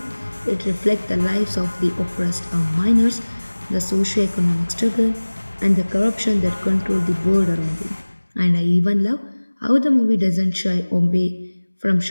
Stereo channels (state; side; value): inverted; both; correlation -1.00